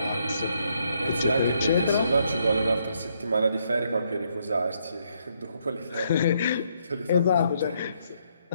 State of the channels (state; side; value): inverted; both; correlation -0.74